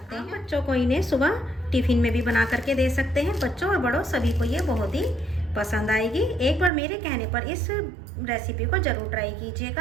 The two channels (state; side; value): drops out; left; at 6.7 s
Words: हैं। बच्चों को इन्हें सुबह टिफिन में भी बना करके दे सकते हैं। बच्चों और बड़ों सभी को ये बहुत ही पसंद आएगी। एक बार मेरे कहने पर इस रेसिपी को ज़रूर ट्राई